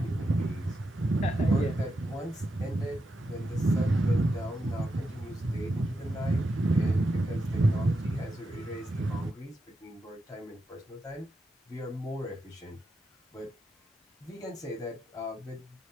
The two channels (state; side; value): normal; both; correlation 0.86